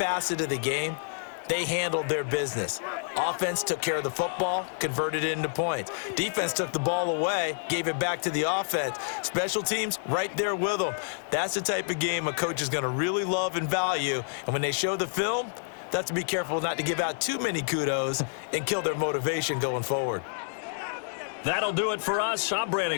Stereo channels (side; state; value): right; silent; 59 dB below the other